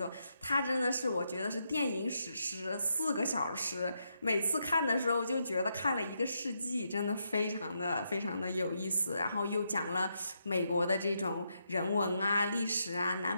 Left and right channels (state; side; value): inverted; both; correlation -0.81